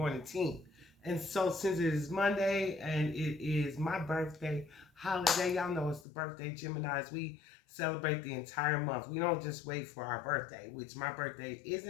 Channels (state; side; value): drops out; right; at 6.1 s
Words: team. And so since it is Monday and it is my birthday holiday, y'all know it's the birthday Geminis. We celebrate the entire month. We don't just wait for our birthday, which my birthday